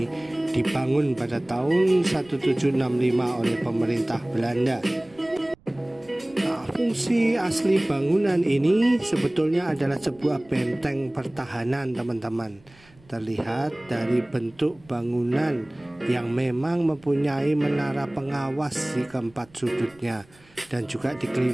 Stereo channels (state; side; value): noise; right; rumble, 28 dB below the sound